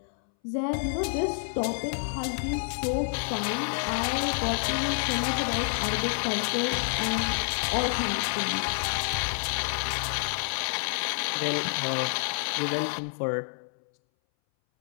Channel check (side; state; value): right; silent; 59 dB below the other